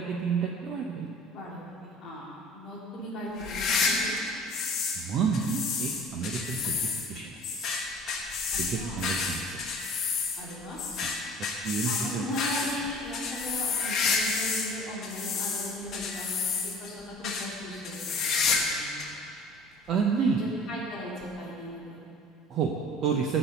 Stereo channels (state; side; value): normal; both; correlation 0.46